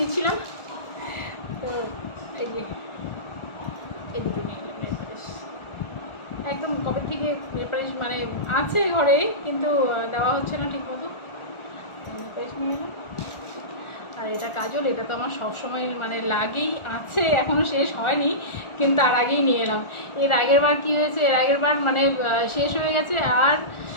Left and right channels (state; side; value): late; right; 1.4 ms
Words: তো এই যে এই দুটো নিয়ে এলাম নেল পালিশ। একদম কবে থেকে নেল পালিশ মানে আছে ঘরে, কিন্তু দেওয়া হচ্ছে না ঠিক মতো। নেল পালিশ নিয়ে এলাম। আর এটা কাজল, এটা তো আমার সবসময় মানে লাগেই আছে, এখনও শেষ হয়নি, কিন্তু তার আগেই নিয়ে এলাম। এর আগের বার কী হয়েছে, এর আগের বার মানে শেষ হয়ে গেছে, আর